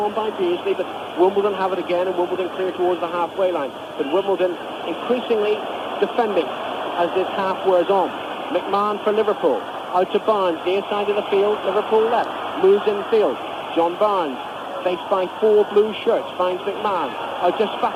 by Beardsley, but Wimbledon have it again, and Wimbledon clear towards the halfway line. But Wimbledon increasingly defending as this half wears on. McMahon for Liverpool, out to Barnes, near side of the field, Liverpool left, moves infield. John Barnes, faced by 4 blue shirts, finds McMahon, out to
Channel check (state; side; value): identical; both; correlation 1.00